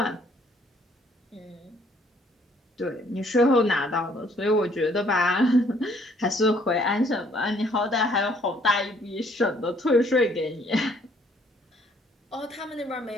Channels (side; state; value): both; normal; correlation 0.63